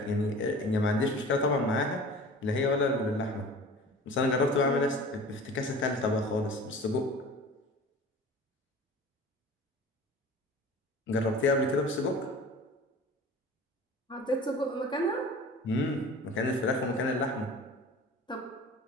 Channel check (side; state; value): both; normal; correlation 0.41